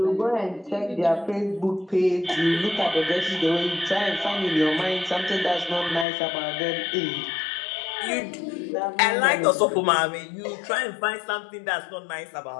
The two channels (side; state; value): right; drops out; at 6.1 s